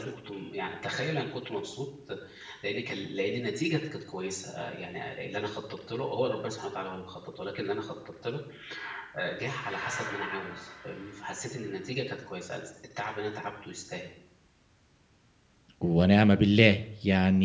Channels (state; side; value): identical; both; correlation 1.00